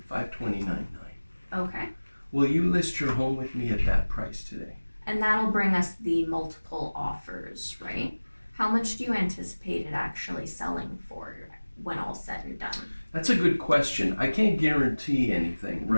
$529.9. Okay. Will you list your home with me at that price today? And that'll bring us the multiple offers, right? How much do you anticipate it actually selling for when all's said and done? That's a good question. I can't guarantee anything,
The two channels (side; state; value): both; inverted; correlation -1.00